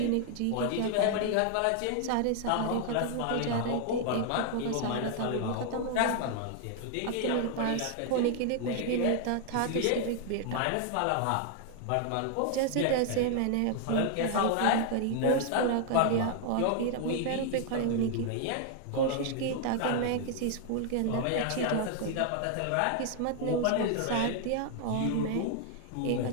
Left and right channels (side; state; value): both; different; correlation 0.00